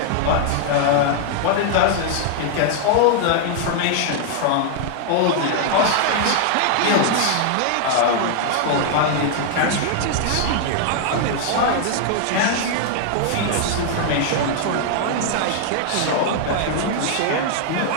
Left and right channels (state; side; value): different; both; correlation 0.00